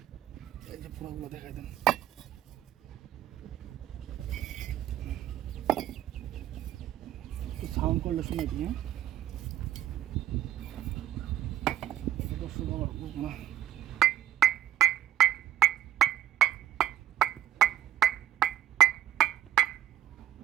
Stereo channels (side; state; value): left; quieter; 11.7 dB